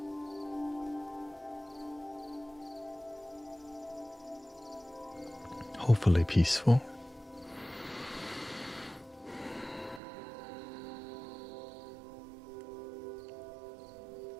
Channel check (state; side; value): drops out; left; at 10.0 s